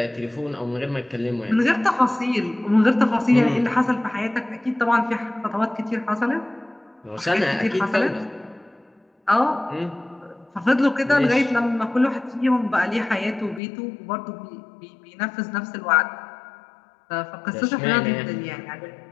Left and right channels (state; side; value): drops out; right; at 13.6 s